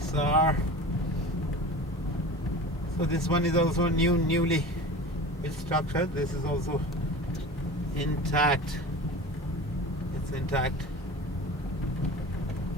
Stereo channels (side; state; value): both; normal; correlation 0.35